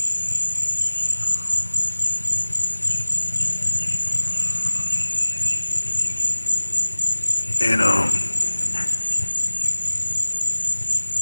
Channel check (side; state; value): both; inverted; correlation -1.00